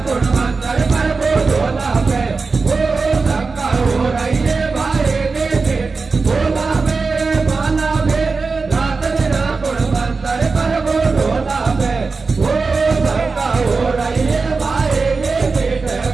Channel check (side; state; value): left; quieter; 4.3 dB